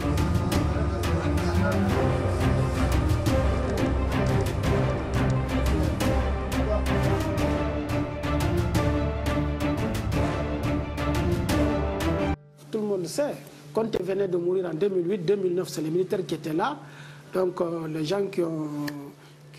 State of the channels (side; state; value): both; identical; correlation 1.00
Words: Tout le monde sait, Conté venait de mourir en 2008-2009, c'est les militaires qui étaient là. Donc les gens qui